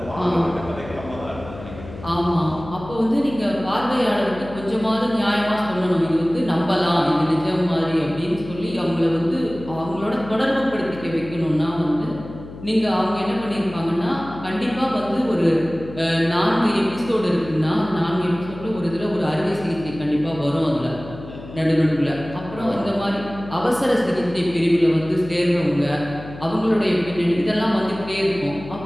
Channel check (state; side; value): noise; left; hum, 14 dB below the sound